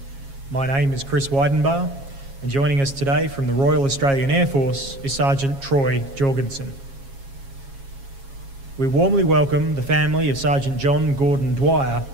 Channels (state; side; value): late; left; 7.3 ms